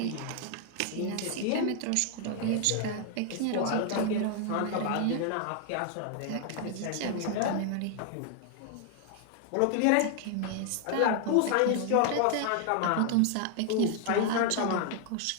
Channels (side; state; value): both; different; correlation 0.00